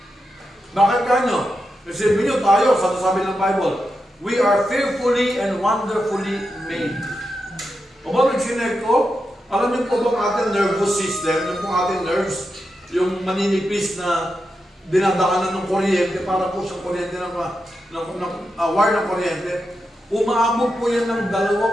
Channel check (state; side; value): normal; both; correlation 0.87